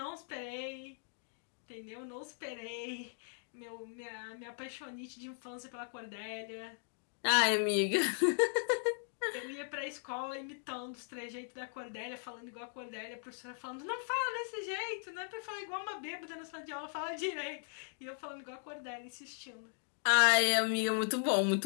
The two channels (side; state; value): right; silent; digital silence